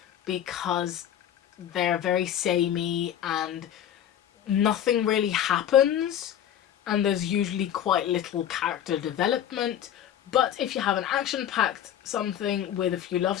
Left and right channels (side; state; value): right; quieter; 10.4 dB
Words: because they're very samey and nothing really happens and there's usually quite little character development. But if you have an action-packed something with a few love